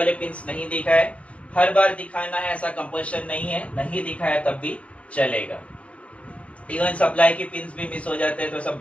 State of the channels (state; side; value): late; right; 0.063 ms